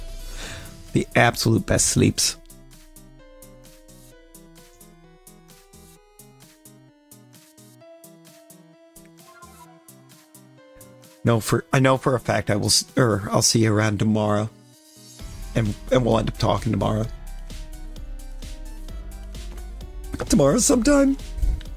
The absolute best sleeps. I know for a fact I'll see you around tomorrow, and we'll end up talking tomorrow. Tomorrow sometime.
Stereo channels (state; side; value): identical; both; correlation 1.00